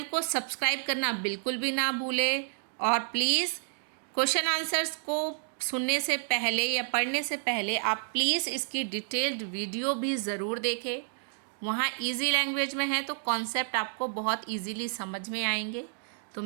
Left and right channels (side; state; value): left; silent; digital silence